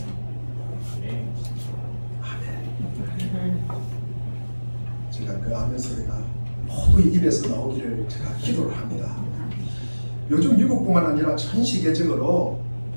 아멘. 제가 그 아멘 소리가 모두 입에서 나오기를 제가 기도를 합니다. 요즘 미국뿐만 아니라 전 세계적으로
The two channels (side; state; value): both; inverted; correlation -1.00